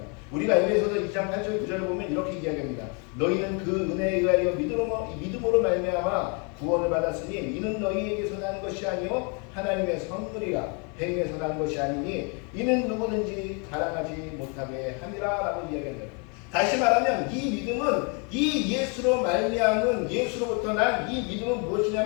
우리가 에베소서 2장 8절 9절을 보면 이렇게 이야기합니다. 너희는 그 은혜에 의하여 믿음으로 말미암아 구원을 받았으니 이는 너희에게서 난 것이 아니요 하나님의 선물이라. 행위에서 난 것이 아니니 이는 누구든지 자랑하지 못하게 함이라 라고 이야기합니다. 다시 말하면 이 믿음은 이 예수로 말미암은 예수로부터 난 이 믿음은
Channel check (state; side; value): quieter; right; 35.2 dB